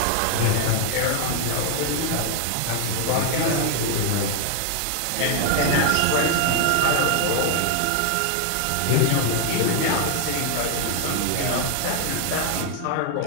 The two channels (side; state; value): both; different; correlation 0.00